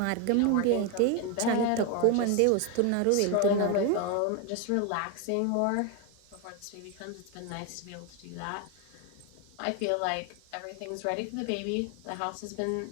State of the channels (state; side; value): different; both; correlation 0.01